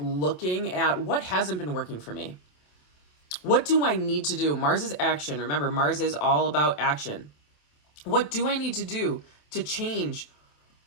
at what hasn't been working for me. What do I need to do? Mars is action. Remember, Mars is all about action. What do I need to do to change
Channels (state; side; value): late; right; 27 ms